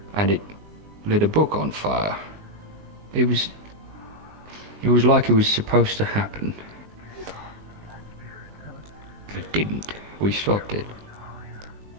and it lit a book on fire. It was like it was supposed to happen. It didn't. We stopped it.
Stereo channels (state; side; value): late; left; 19 ms